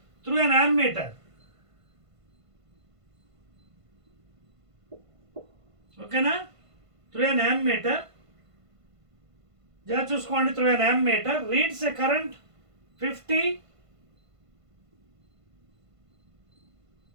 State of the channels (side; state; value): left; late; 1.5 ms